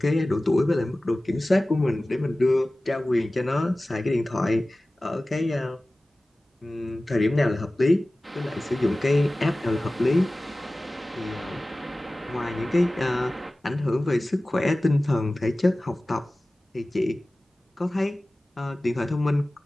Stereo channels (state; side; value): normal; both; correlation 0.97